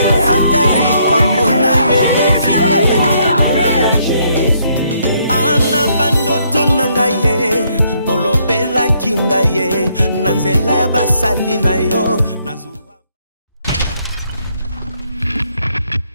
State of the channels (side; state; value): both; inverted; correlation -0.71